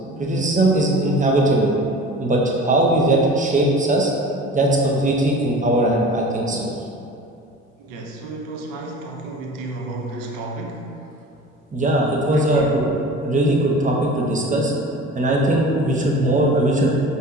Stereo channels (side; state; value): both; normal; correlation 0.39